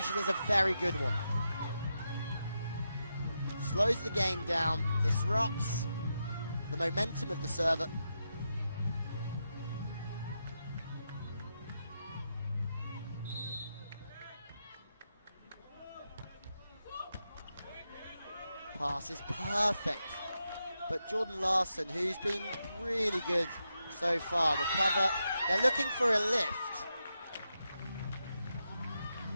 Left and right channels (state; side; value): inverted; both; correlation -0.86